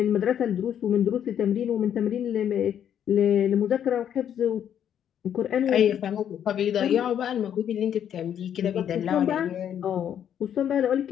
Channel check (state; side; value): quieter; right; 9.5 dB